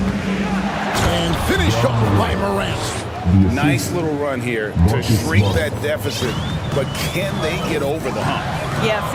finished off by Morant. Nice little run here to shrink that deficit, but can they get over the hump? Yeah, it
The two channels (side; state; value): both; identical; correlation 1.00